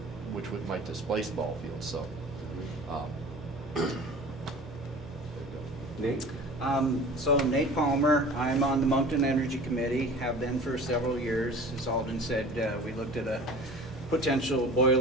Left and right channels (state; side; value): normal; both; correlation 0.41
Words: might displace ball fields, so. Nate? So Nate Palmer, I'm on the Moncton Energy Committee, have been for several years. As Alden said, we looked at a potential